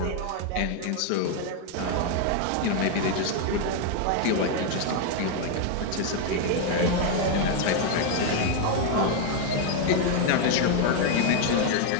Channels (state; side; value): different; both; correlation 0.00